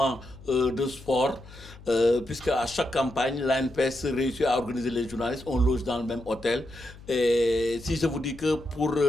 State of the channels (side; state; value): left; noise; hum, 19 dB below the sound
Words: de sport, puisque à chaque campagne, l'ANPS réussit à organiser les journalistes, on loge dans le même hôtel. Et si je vous dis que pour